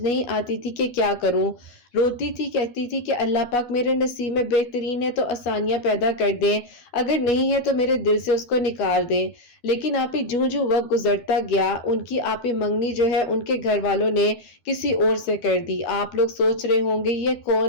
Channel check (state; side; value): late; right; 12 ms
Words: آتی تھی کہ کیا کروں۔ روتی تھی، کہتی تھی کہ اللہ پاک میرے نصیب میں بہترین ہے تو آسانیاں پیدا کر دیں، اگر نہیں ہے تو میرے دل سے اس کو نکال دیں۔ لیکن آپ ہی جوں جوں وقت گزرتا گیا، ان کی آپ ہی منگنی جو ہے ان کے گھر والوں نے کسی اور سے کر دی۔ آپ لوگ سوچ رہے ہوں گے یہ